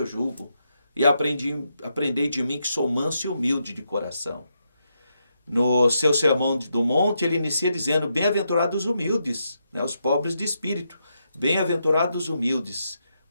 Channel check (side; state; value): both; inverted; correlation -0.82